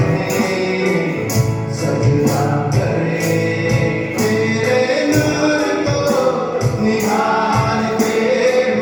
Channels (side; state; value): both; identical; correlation 1.00